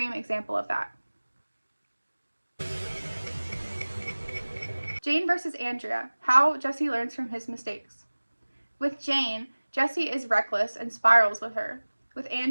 example of that. Jane versus Andrea, how Jesse learns from his mistakes. With Jane, Jesse is reckless and spirals with her. With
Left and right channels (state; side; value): inverted; both; correlation -1.00